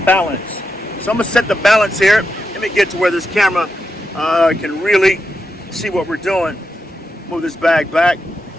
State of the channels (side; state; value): both; normal; correlation 0.86